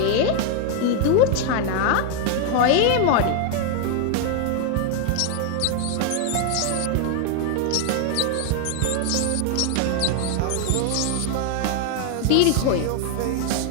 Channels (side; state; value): both; different; correlation 0.00